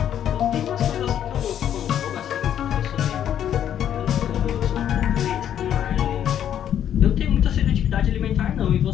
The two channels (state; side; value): quieter; right; 10.0 dB